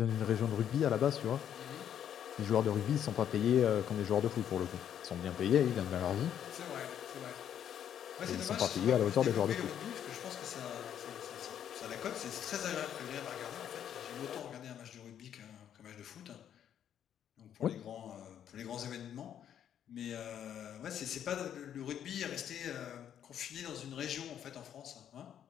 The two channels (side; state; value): right; quieter; 9.6 dB